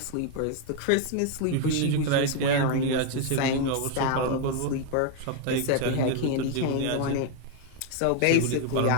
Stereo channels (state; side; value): different; both; correlation 0.01